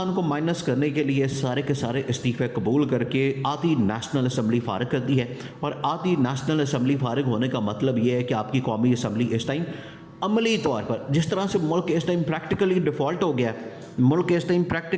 को माइनस करने के लिए सारे के सारे इस्तीफ़े कबूल करके आधी नेशनल असम्बली फारिग कर दी है। और आधी नेशनल असम्बली फारिग होने का मतलब ये है कि आपकी कौमी असम्बली इस टाइम अमली तौर पर, जिस तरह से मुल्क इस टाइम प्रैक्टिकली डिफ़ॉल्ट हो गया है, मुल्क इस टाइम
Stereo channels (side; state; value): both; identical; correlation 1.00